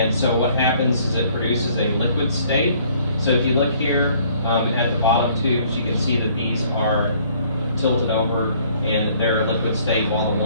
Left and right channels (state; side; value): inverted; both; correlation -0.60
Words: so what happens is it produces a liquid state. So if you look here at the bottom tubes, you can see that these are tilted over and they're a liquid state, while the